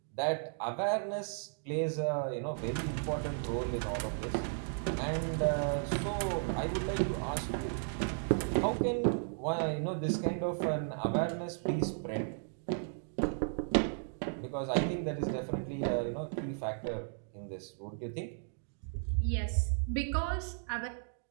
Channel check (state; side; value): silent; left; digital silence